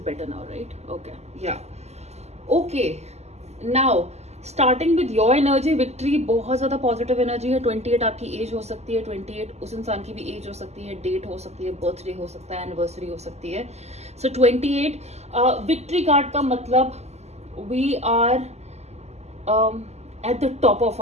now, right? Okay, yeah. Okay, now starting with your energy, victory बहुत ज्यादा पॉजिटिव एनर्जी है. 28 आपकी एज हो सकती है, 28 उस इंसान की भी एज हो सकती है, डेट हो सकती है, बर्थडे हो सकता है, एनिवर्सरी हो सकती है. सो 28 विक्ट्री कार्ड का मतलब we are at the top of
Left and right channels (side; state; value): left; late; 0.32 ms